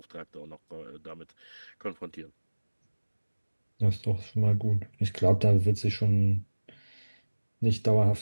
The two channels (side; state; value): both; inverted; correlation -1.00